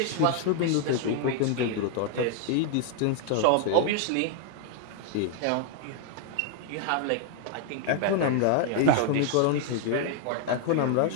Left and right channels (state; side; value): different; both; correlation 0.00